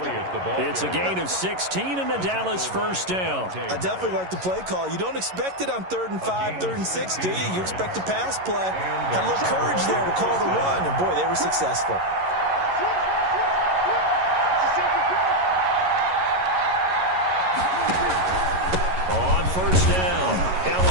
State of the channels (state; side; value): late; left; 11 ms